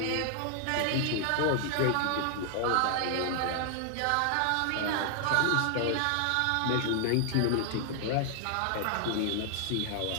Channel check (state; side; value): different; both; correlation 0.00